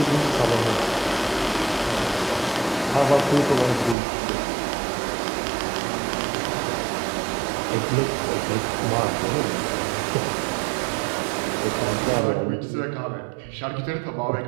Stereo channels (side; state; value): left; drops out; at 4.0 s